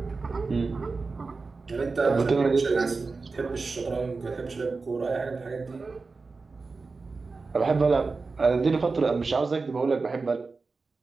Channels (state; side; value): quieter; left; 4.1 dB